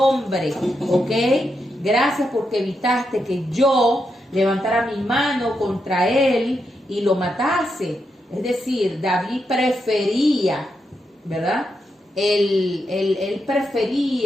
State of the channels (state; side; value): normal; both; correlation 0.84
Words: ¿ok? Gracias porque evitaste que yo levantara mi mano contra él y lo matase. Es decir, David prefería, ¿verdad? Él